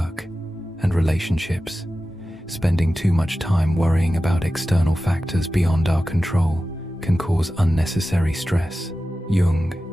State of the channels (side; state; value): both; normal; correlation 0.94